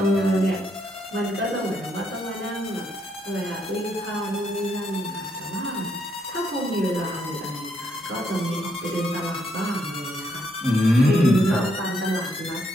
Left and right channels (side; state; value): both; normal; correlation 0.75